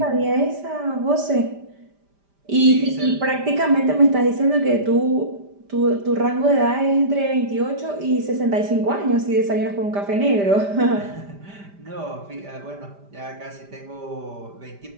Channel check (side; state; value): left; late; 5.0 ms